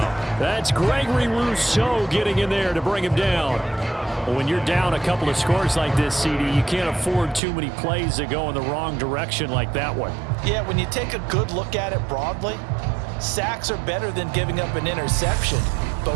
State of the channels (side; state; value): left; drops out; at 7.4 s